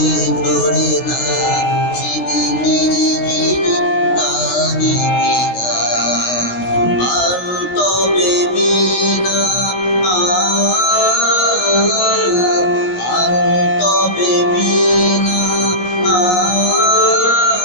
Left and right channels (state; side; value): late; right; 16 ms